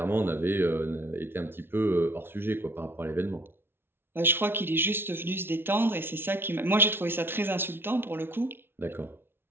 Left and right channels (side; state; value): left; late; 0.11 ms